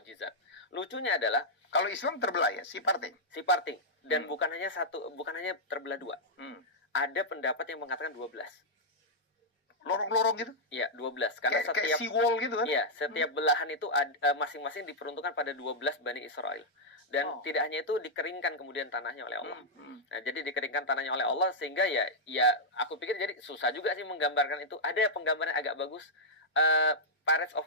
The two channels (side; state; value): both; normal; correlation -0.07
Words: Lucunya adalah kalau Islam terbelah ya, si parting. Dan bukan hanya terbelah dua. Ada pendapat yang mengatakan 12. Lorong-lorong gitu? Iya, 12. Karena kayak seawall gitu kan? Iya, setiap belahan itu masing-masing diperuntukkan pada 12 Bani Israel. Dan tidak hanya itu, dikeringkan kemudian tanahnya oleh Allah. Nah, jadi dikeringkan tanahnya oleh Allah sehingga ya aku pikir jadi susah juga sih menggambarkan itu. Ada penggambaran agak bagus, Pirates